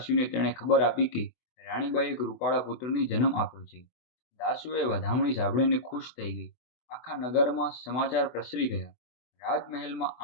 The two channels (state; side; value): late; right; 24 ms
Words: તેણે ખબર આપી કે રાણીબાએ એક રૂપાળા પુત્રને જન્મ આપ્યો છે. દાસીઓએ વધામણી સાંભળીને ખુશ થઈ ગઈ. આખા નગરમાં સમાચાર પ્રસરી ગયા. રાજમહેલમાં